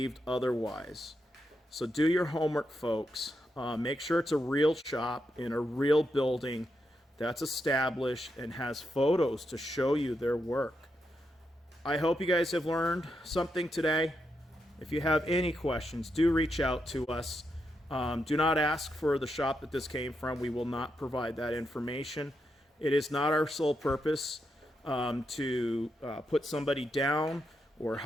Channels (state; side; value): normal; both; correlation 0.84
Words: otherwise. So do your homework, folks. Make sure it's a real shop in a real building that's established and has photos to show you their work. I hope you guys have learned something today. If you have any questions, do reach out to us. Do not ask for the shop that this came from. We will not provide that information. It is not our sole purpose to put somebody down or